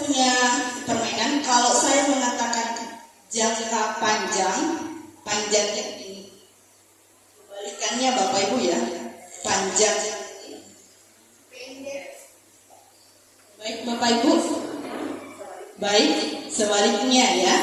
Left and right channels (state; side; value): identical; both; correlation 1.00